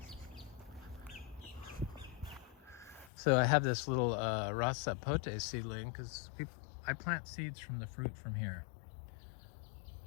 So I have this little rasa pote seedling, because I plant seeds from the fruit from here.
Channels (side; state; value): right; drops out; at 3.1 s